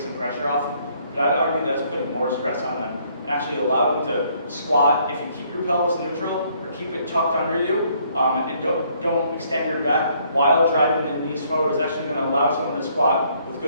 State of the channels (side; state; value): both; inverted; correlation -0.66